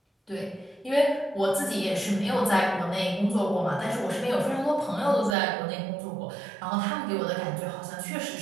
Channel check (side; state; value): left; drops out; at 5.4 s